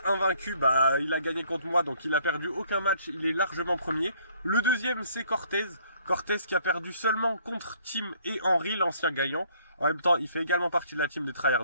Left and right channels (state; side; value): inverted; both; correlation -0.62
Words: invaincu. Bah, il a gagné contre moi, donc il a perdu aucun match. Il est largement premier. Le deuxième, c'est Cortez. Cortez qui a perdu seulement contre Tim et Henry, l'ancien gagnant. En même temps, il fait également partie de la team des